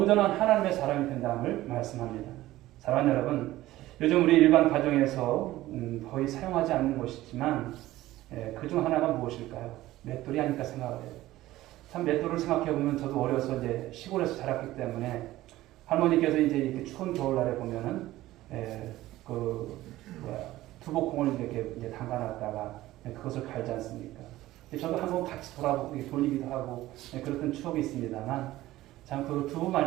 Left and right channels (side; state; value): left; quieter; 16.1 dB